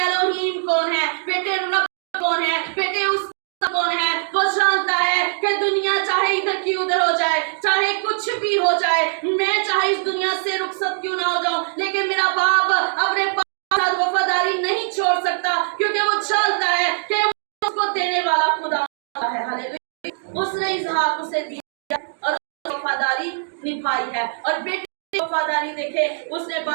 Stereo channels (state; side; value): silent; left; digital silence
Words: कौन है, बेटे रब कौन है, बेटे उस कौन है। वो जानता है कि दुनिया चाहे इधर की उधर हो जाए, चाहे कुछ भी हो जाए, मैं चाहे इस दुनिया से रुखसत क्यों ना हो जाऊं, लेकिन मेरा बाप अपने साथ वफादारी नहीं छोड़ सकता, क्योंकि वो जानता है कि वो उसको देने वाला खुदा है। हालेलुया। उसने इसहाक उसे दिया और वफादारी निभाई है। और बेटे की वफादारी देखे, उसने